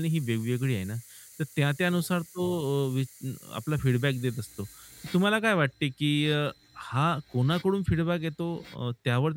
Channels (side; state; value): both; identical; correlation 1.00